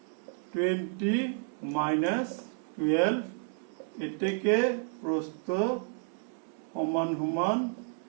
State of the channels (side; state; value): left; silent; 57 dB below the other